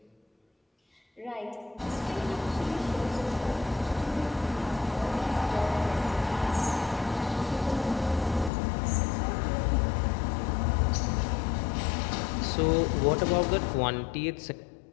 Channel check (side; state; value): right; drops out; at 8.5 s